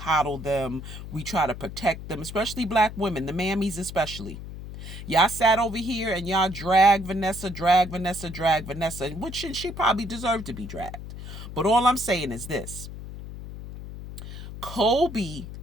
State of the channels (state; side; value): noise; left; hum, 11 dB below the sound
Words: them. We try to protect them, especially black women, the mammies especially. Y'all sat over here and y'all drag Vanessa, which she probably deserved to be dragged. But all I'm saying is this. Kobe